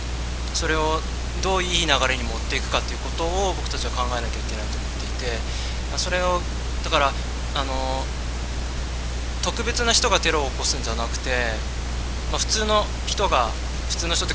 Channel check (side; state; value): both; identical; correlation 1.00